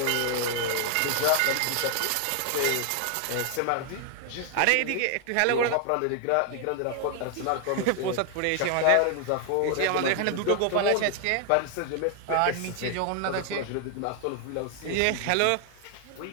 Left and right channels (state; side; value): different; both; correlation 0.00